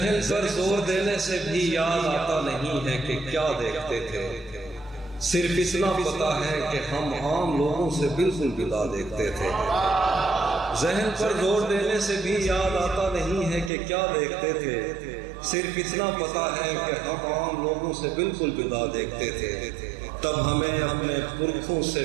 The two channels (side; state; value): left; drops out; at 13.7 s